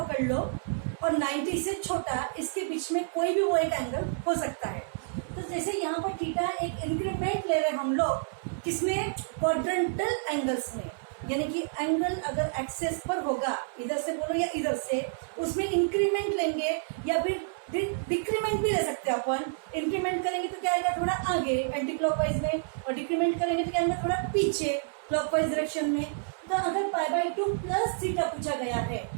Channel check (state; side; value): silent; left; 58 dB below the other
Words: लो और 90 से छोटा, इसके बीच में कोई भी वो एक एंगल हो सकता है। तो जैसे यहाँ पर थीटा एक इंक्रीमेंट ले रहे हैं हम लोग, किसमें? क्वाड्रेंटल एंगल्स में। यानी कि एंगल अगर एक्सेस पर होगा, इधर से बोलो या इधर से, उसमें इंक्रीमेंट लेंगे या फिर डिक्रीमेंट भी ले सकते हैं अपन। इंक्रीमेंट करेंगे तो क्या आएगा? थोड़ा आगे एंटी क्लॉकवाइज में, और डिक्रीमेंट करेंगे तो क्या आएगा? थोड़ा पीछे क्लॉकवाइज डायरेक्शन में। तो अगर पाई बाई 2 प्लस थीटा पूछा गया है,